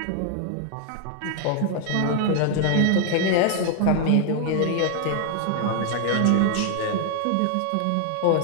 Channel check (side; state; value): both; different; correlation 0.00